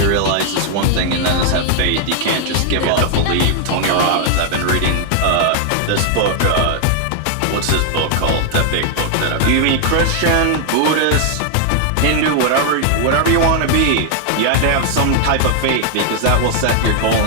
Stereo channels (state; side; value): different; both; correlation 0.00